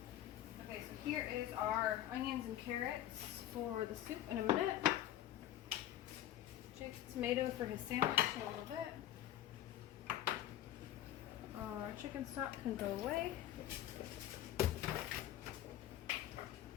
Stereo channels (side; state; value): right; quieter; 12.6 dB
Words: Okay, so here is our onions and carrots for the soup in a minute. Jake's tomato for his sandwich in a little bit. Our chicken stock can go away.